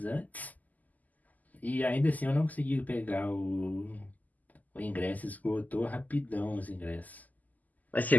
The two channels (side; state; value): right; late; 0.080 ms